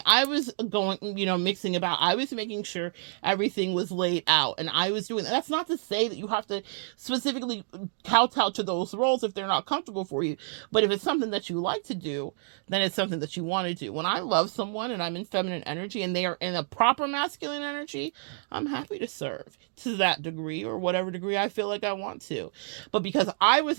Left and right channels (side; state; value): left; silent; digital silence